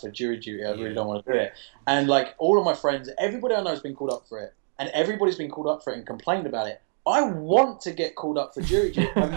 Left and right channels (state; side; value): silent; left; digital silence